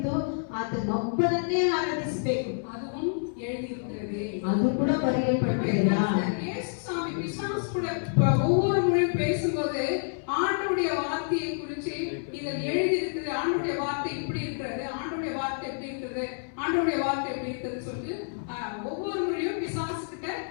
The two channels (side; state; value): right; silent; 59 dB below the other